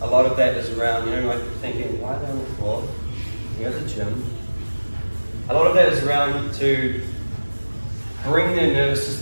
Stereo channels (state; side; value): inverted; both; correlation -1.00